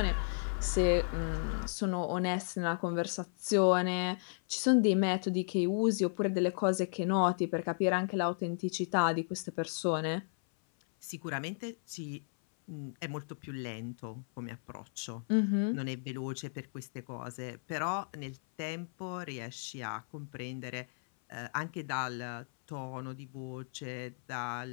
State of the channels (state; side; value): silent; right; 55 dB below the other